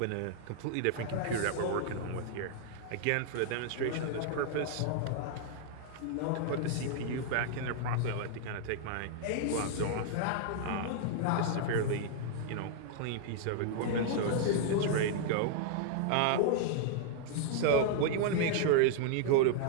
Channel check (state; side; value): different; both; correlation -0.01